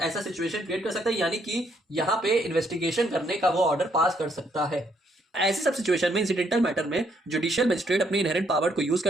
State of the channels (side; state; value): both; normal; correlation 0.71